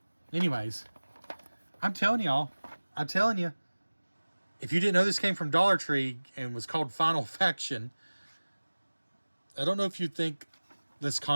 Anyways, I'm telling y'all, if you didn't know this came from Dollar Tree and was called Final Faction, I don't know if you'd think this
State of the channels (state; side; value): inverted; both; correlation -1.00